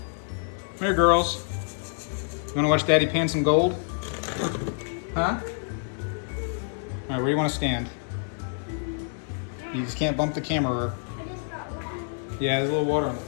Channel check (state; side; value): silent; right; 60 dB below the other